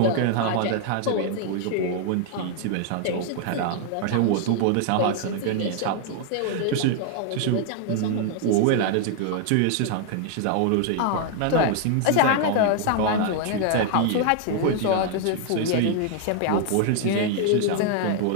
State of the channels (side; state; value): both; different; correlation 0.00